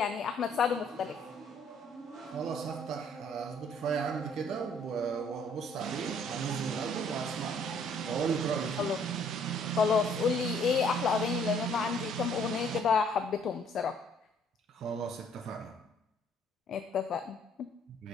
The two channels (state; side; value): normal; both; correlation 0.62